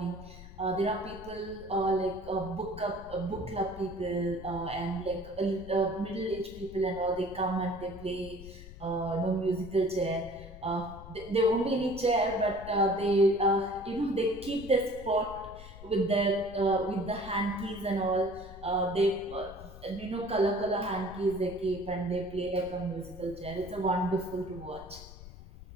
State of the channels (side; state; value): left; noise; rumble, 15 dB below the sound